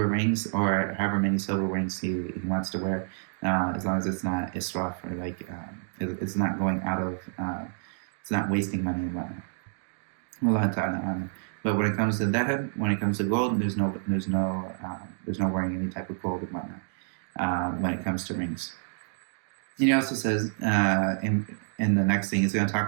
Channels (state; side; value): silent; left; digital silence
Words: rings, or however many silver rings he wants to wear, as long as it's not israf, or like it's not going out of, it's not wasting money and whatnot. Wallahu ta'ala. But when it comes to dhahab, when it comes to gold, there's no wearing any type of gold and whatnot when it comes to rings. And he also says, in the next thing, he's going to